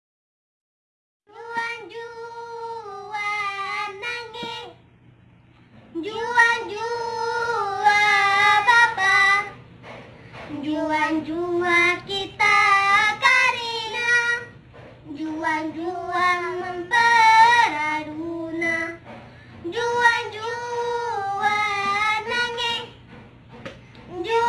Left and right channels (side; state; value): both; identical; correlation 1.00